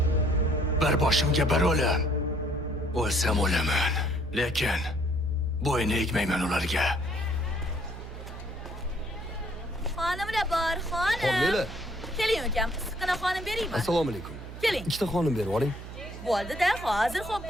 bir boshimga bir o'lim. O'lsam o'laman, lekin bo'yni egmayman ularga. Xonimlar bor, xonim. Xonimlar. Keling ukam, issiqqina xonim beraymi? Assalomu alaykum. Keling. Ikkita xonim berib oling. Bo'ldi-da, hozir xo'p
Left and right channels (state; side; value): noise; right; hum, 12 dB below the sound